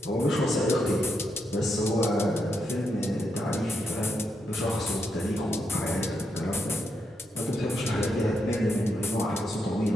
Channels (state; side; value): normal; both; correlation 0.82